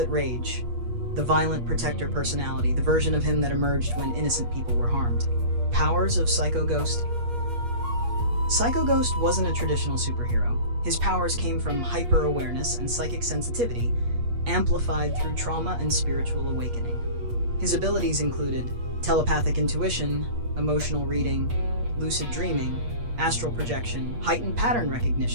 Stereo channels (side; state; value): left; late; 8.4 ms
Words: Rage, the violent protector personality, the version of him that emerged when innocent people were harmed. Powers of Psycho Ghost. Psycho Ghost wasn't a traditional superhero. His powers came from hyper-awareness and psychic sensitivity, amplified through trauma and spiritual awakening. His abilities included telepathic intuition, emotional reading, lucid dreaming, astral projection, heightened pattern